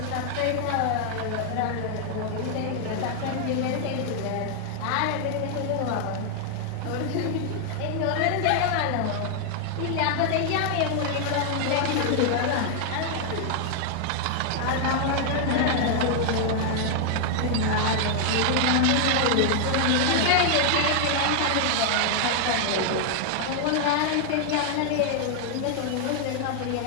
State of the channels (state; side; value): different; both; correlation 0.00